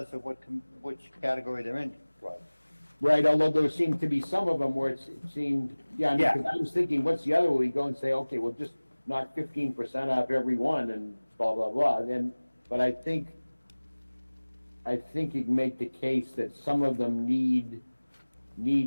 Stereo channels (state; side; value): inverted; both; correlation -1.00